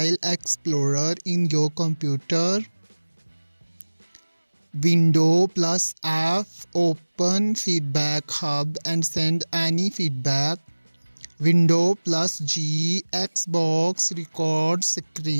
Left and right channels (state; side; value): inverted; both; correlation -1.00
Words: Explorer in your computer. Window plus F open Feedback Hub and send any feedback. Window plus G Xbox record